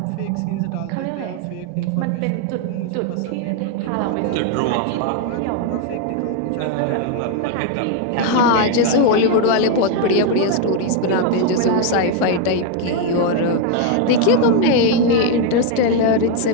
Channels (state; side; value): different; both; correlation 0.01